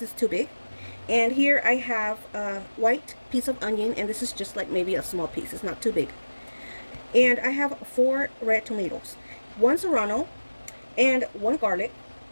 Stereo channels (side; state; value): both; inverted; correlation -1.00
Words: too big. And here I have a white piece of onion, and this is just like maybe a small piece, it's not too big. And I have 4 red tomatoes, 1 serrano, and 1 garlic.